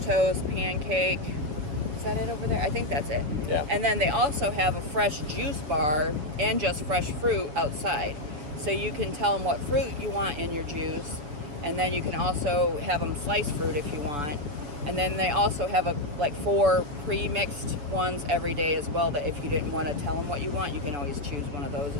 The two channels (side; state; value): left; late; 6.9 ms